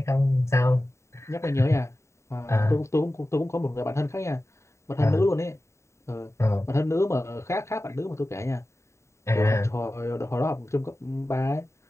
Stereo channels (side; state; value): right; late; 0.14 ms